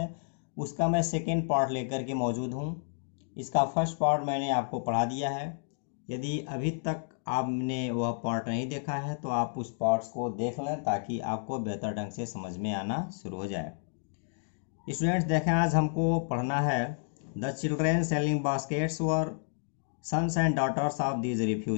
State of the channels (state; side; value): silent; right; digital silence